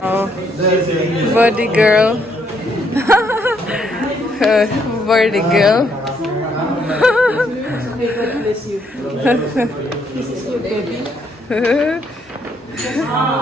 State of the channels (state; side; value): normal; both; correlation 0.72